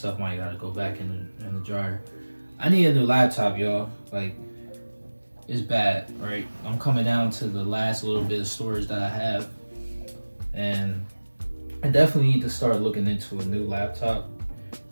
might gotta go back in the dryer. I need a new laptop, y'all. Like, it's bad, right? I'm coming down to the last little bit of storage that I have, and I definitely need to start looking into a new laptop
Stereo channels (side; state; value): both; inverted; correlation -1.00